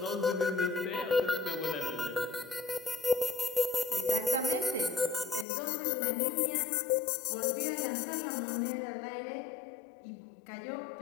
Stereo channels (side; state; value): right; drops out; at 5.5 s